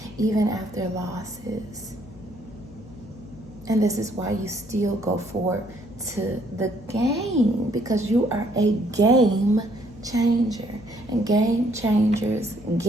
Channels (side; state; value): left; noise; hum, 20 dB below the sound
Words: even after losses. And this is why you still go forward to the game, because you are a game changer. And game changers